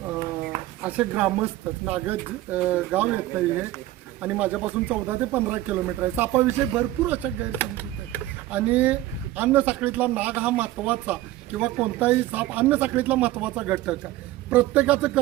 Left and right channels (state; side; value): quieter; left; 15.7 dB